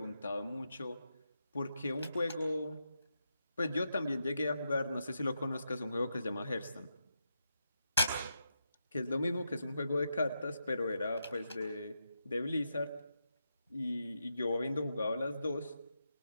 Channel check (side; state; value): both; inverted; correlation -0.85